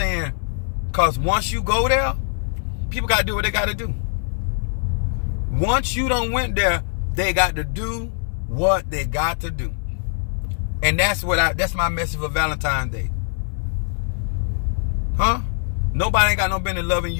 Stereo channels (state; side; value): silent; right; digital silence